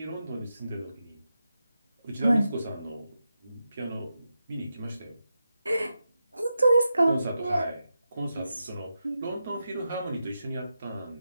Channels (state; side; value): inverted; both; correlation -0.88